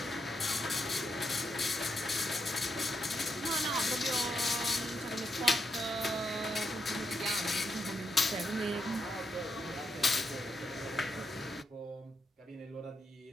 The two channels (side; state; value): both; normal; correlation 0.81